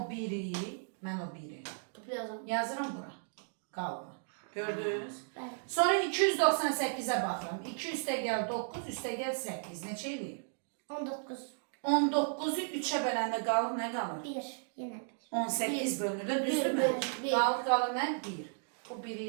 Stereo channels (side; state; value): left; silent; digital silence